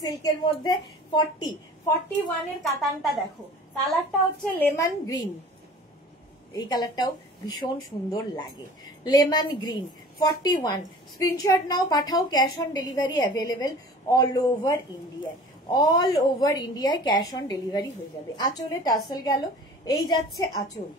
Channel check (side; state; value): both; normal; correlation 0.44